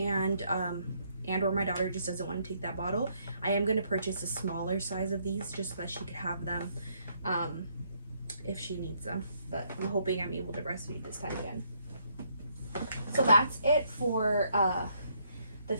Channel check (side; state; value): both; inverted; correlation -0.71